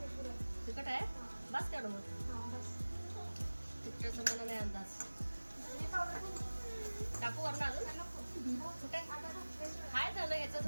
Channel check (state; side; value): inverted; both; correlation -1.00